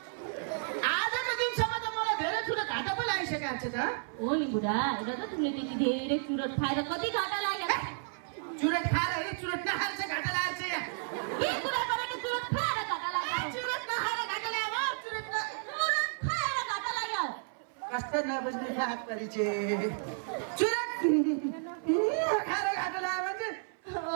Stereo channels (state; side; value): silent; left; 56 dB below the other